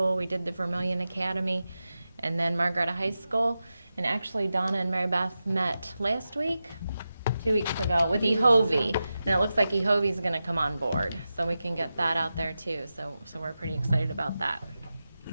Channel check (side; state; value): both; inverted; correlation -0.92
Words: We did the Vermilion Academy, and then Margaretta High School. And actually, Donna and Mary Beth met last week, 2 weeks ago, with EHOVI. And it looks like EHOVI's going to come on board, so we can get that out there too. So we're pretty excited about that.